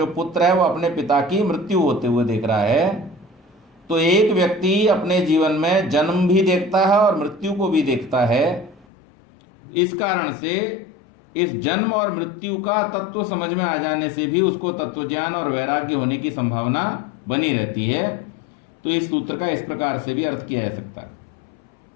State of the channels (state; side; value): drops out; right; at 8.8 s